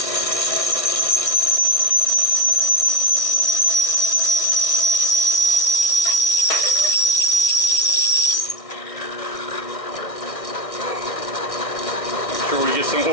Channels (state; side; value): late; right; 1.6 ms